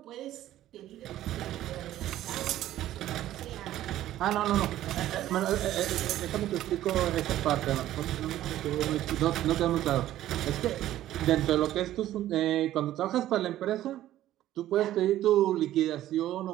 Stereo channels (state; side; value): quieter; left; 13.5 dB